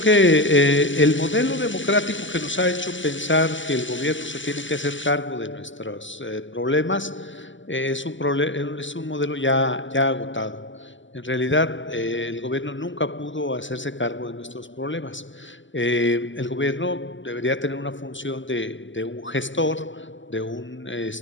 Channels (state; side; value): late; right; 0.55 ms